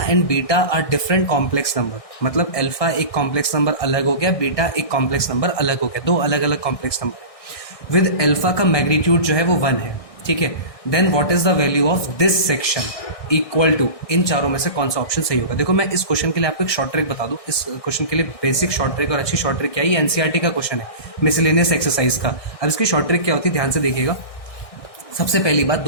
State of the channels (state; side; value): late; right; 1.6 ms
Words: beta are different complex number, मतलब अल्फा एक कॉम्प्लेक्स नंबर अलग हो गया, बीटा एक कॉम्प्लेक्स नंबर अलग हो गया, दो अलग अलग कॉम्प्लेक्स नंबर। विद अल्फा का मैग्नीट्यूड जो है वो 1 है, ठीक है। Then what is the value of this section equal to, इन चारों में से कौन सा ऑप्शन सही होगा? देखो मैं इस क्वेश्चन के लिए आपको एक शॉर्ट ट्रिक बता दूं। इस क्वेश्चन के लिए बेसिक शॉर्ट ट्रिक और अच्छी शॉर्ट ट्रिक क्या है? ये एनसीईआरटी का क्वेश्चन है, मिसलेनियस एक्सरसाइज का। अब इसकी शॉर्ट ट्रिक क्या होती है, ध्यान से देखिएगा। सबसे पहली बात,